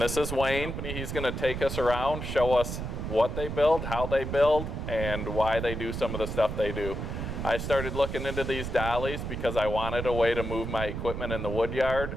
this is Wayne. He's going to take us around, show us what they build, how they build, and why they do some of the stuff they do. I started looking into these dollies because I wanted a way to move my equipment in the wood yard,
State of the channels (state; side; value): noise; right; rumble, 5 dB below the sound